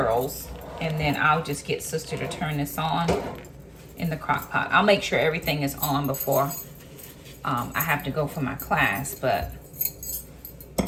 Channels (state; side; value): identical; both; correlation 1.00